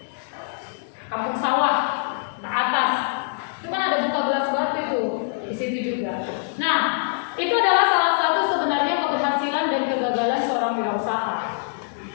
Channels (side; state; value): right; silent; 63 dB below the other